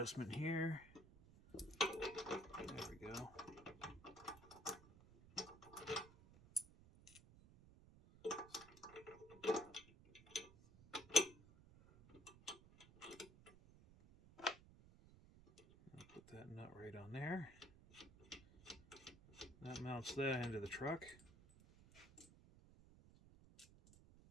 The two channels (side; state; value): right; noise; rumble, 20 dB below the sound